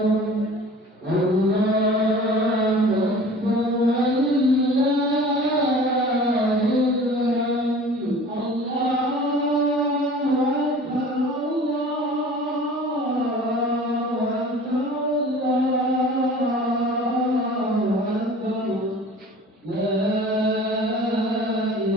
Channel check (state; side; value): normal; both; correlation 0.43